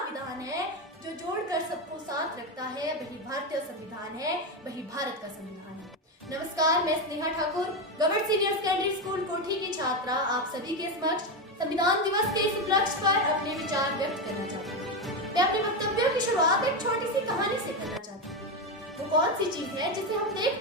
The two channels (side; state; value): both; normal; correlation 0.12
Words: विधान है। जो जोड़कर सबको साथ रखता है वही भारतीय संविधान है, वही भारत का संविधान है। नमस्कार, मैं Sneha Thakur, government senior secondary school कोठी की छात्रा आप सभी के समक्ष संविधान दिवस के इस उपलक्ष्य पर अपने विचार व्यक्त करना चाहती हूँ। मैं अपने वक्तव्यों की शुरुआत एक छोटी सी कहानी से करना चाहती हूँ। वो कौन सी चीज है जिसे हम